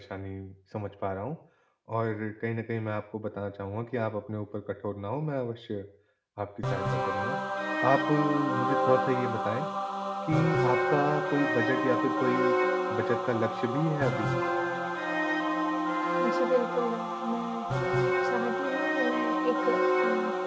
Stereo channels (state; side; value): identical; both; correlation 1.00